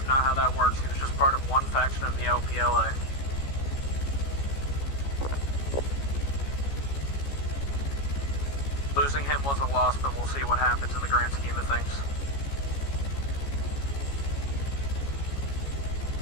not how that works. He was just part of one faction of the LPLA. Losing him was a loss, but we'll see what happens in the grand scheme of things.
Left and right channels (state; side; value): late; right; 14 ms